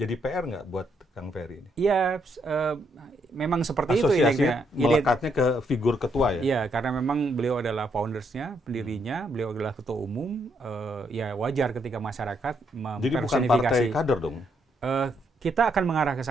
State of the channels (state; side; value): normal; both; correlation 0.75